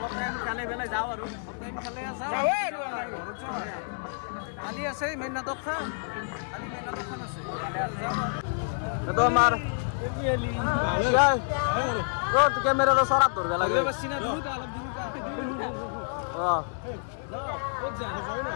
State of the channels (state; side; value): silent; right; digital silence